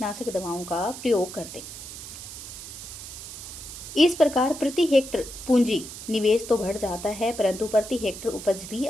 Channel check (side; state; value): right; noise; hiss, 11 dB below the sound